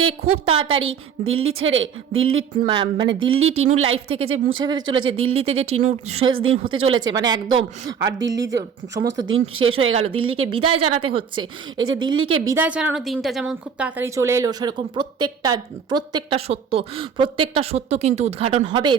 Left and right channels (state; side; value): quieter; left; 7.1 dB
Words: খুব তাড়াতাড়ি দিল্লি ছেড়ে মানে দিল্লি টিনুর লাইফ থেকে যে মুছে ফেলতে চলেছে, দিল্লিতে যে টিনুর শেষ দিন হতে চলেছে মানে একদম, আর দিল্লি যে সমস্ত দিন শেষ হয়ে গেল, দিল্লিকে বিদায় জানাতে হচ্ছে। এই যে দিল্লিকে বিদায় জানানোর দিনটা যেমন খুব তাড়াতাড়ি চলে এলো, সেরকম প্রত্যেকটা সত্য কিন্তু উদ্ঘাটন হবে